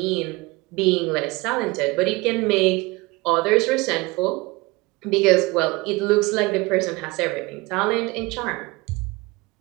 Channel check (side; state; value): left; quieter; 23.3 dB